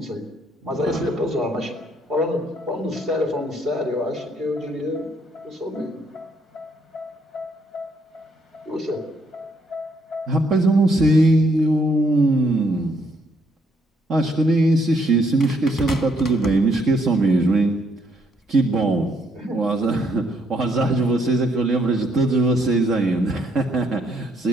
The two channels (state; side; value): normal; both; correlation 0.71